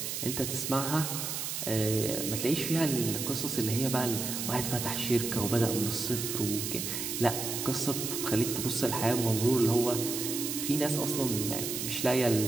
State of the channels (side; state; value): right; noise; hiss, 3 dB below the sound